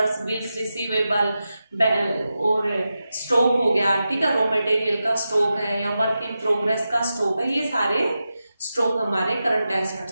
bills receivable और स्टॉक हो गया, ठीक है, रॉ मटेरियल का स्टॉक है या वर्क इन प्रोग्रेस का स्टॉक है, ये सारे स्टॉक हमारे करंट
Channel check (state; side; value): inverted; both; correlation -0.91